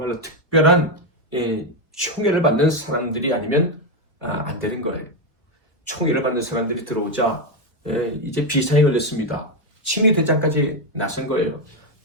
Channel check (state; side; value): normal; both; correlation 0.06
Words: 특별한 총애를 받는 사람들이 아니면 안 되는 거예요. 총애를 받는 사람들이 들어오자 이제 비상이 걸렸습니다. 친위대장까지 나선 거예요.